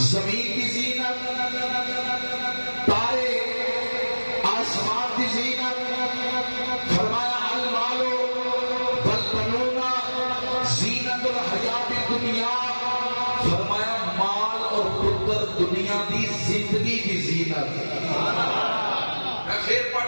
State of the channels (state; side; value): inverted; both; correlation -1.00